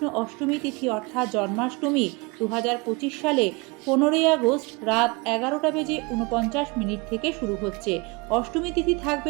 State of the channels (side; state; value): left; quieter; 27.2 dB